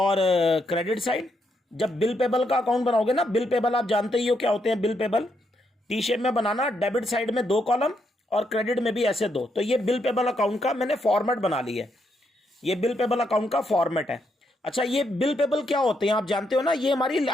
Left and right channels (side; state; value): both; normal; correlation 0.78